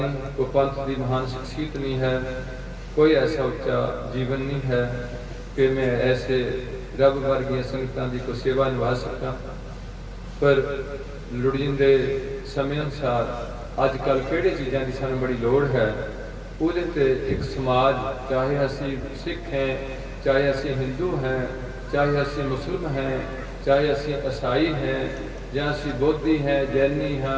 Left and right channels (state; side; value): identical; both; correlation 1.00